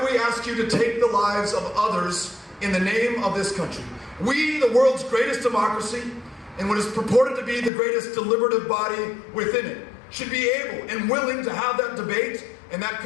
we ask you to take the lives of others in the name of this country? We, the world's greatest democracy, and what is purported to be the greatest deliberative body within it, should be able and willing to have that debate and that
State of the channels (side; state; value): right; drops out; at 7.7 s